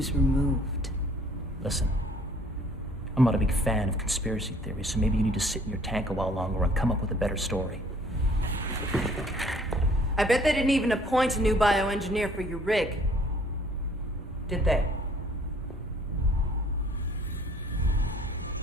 removed. Listen, I'm not a big fan of conspiracy theories, so maybe you need to sit in your tank a while longer and come up with a better story. I bet they didn't even appoint a new bioengineer for your rig. Did they?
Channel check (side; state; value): both; normal; correlation 0.57